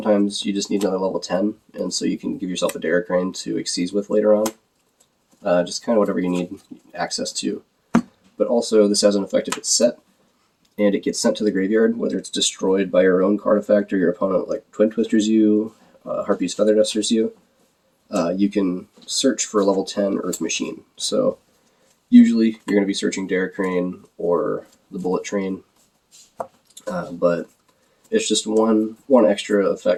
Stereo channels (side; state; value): both; identical; correlation 1.00